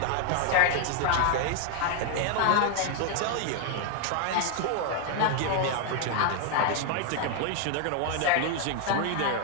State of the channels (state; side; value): different; both; correlation 0.00